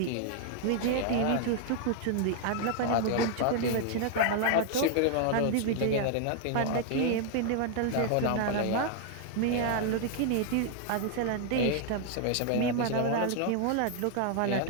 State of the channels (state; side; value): different; both; correlation 0.00